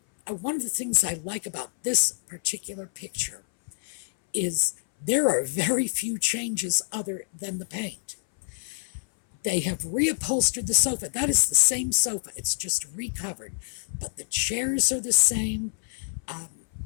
one of the things I like about this particular picture is there are very few changes other than the paint. They have reupholstered the sofa. That is the same sofa. It's just recovered. But the chairs are the same.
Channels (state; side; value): silent; right; 59 dB below the other